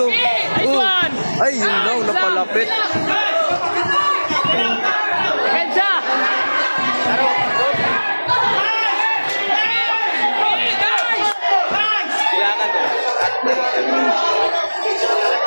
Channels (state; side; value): inverted; both; correlation -1.00